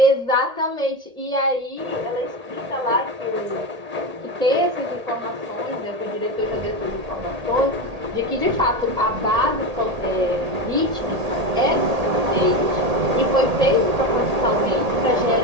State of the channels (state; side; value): late; left; 1.8 ms